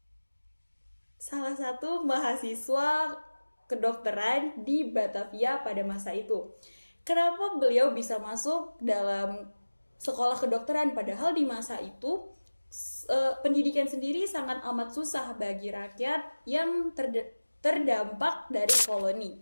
salah satu mahasiswa kedokteran di Batavia pada masa itu. Kenapa beliau bisa masuk dalam sekolah kedokteran padahal di masa itu pendidikan sendiri sangat amat susah bagi rakyat yang terdampak dari koloni.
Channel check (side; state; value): both; inverted; correlation -1.00